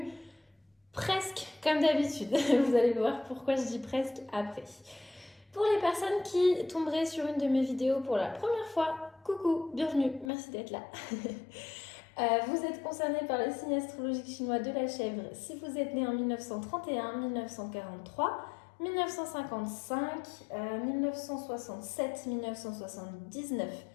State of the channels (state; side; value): drops out; right; at 10.3 s